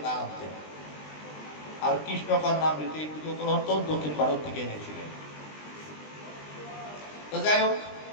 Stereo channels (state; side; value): late; right; 20 ms